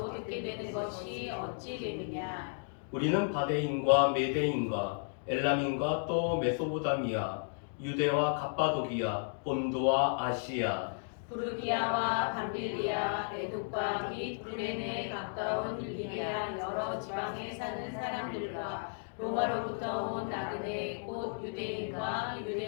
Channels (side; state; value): right; silent; digital silence